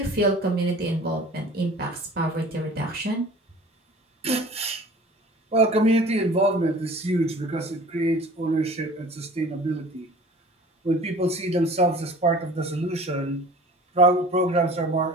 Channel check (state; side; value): normal; both; correlation 0.44